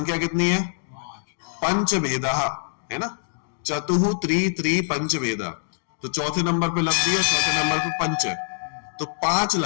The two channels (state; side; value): silent; right; digital silence